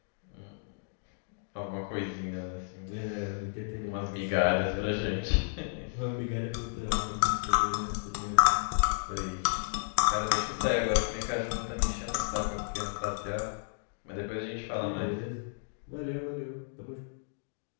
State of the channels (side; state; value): right; silent; digital silence